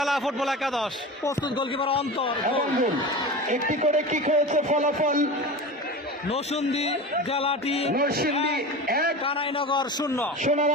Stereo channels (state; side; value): normal; both; correlation 0.30